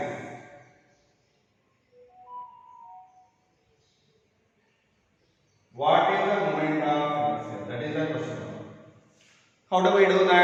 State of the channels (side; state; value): both; identical; correlation 1.00